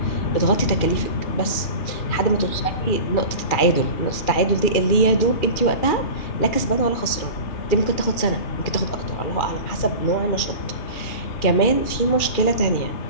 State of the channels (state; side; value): late; right; 2.4 ms